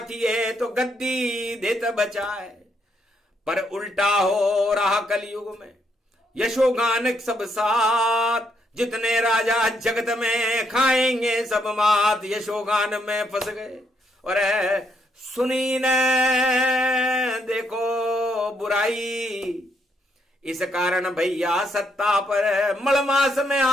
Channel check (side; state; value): both; normal; correlation 0.74